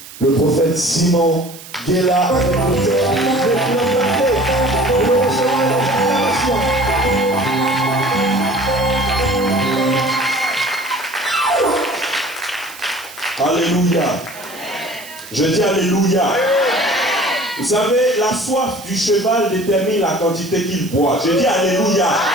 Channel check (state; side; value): noise; right; hiss, 17 dB below the sound